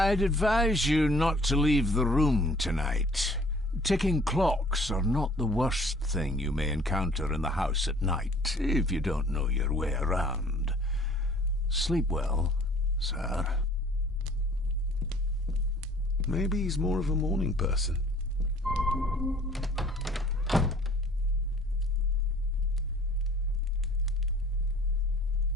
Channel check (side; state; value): both; normal; correlation 0.53